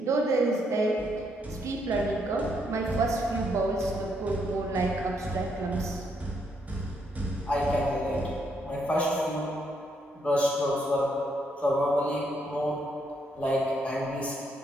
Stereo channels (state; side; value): normal; both; correlation 0.75